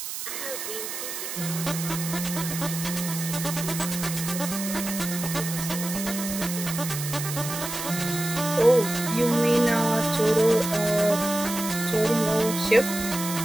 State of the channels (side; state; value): right; noise; hiss, 6 dB below the sound